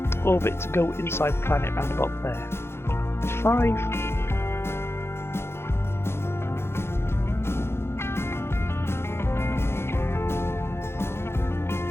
orbit to go inside the planet round about there. 5.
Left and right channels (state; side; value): late; right; 0.12 ms